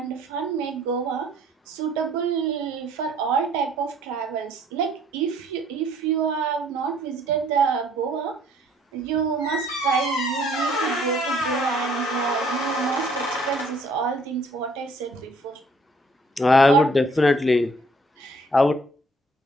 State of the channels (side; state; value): both; normal; correlation 0.60